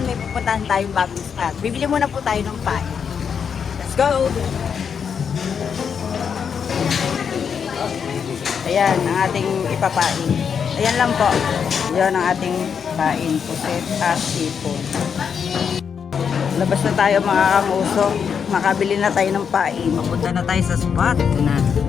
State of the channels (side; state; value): right; quieter; 6.9 dB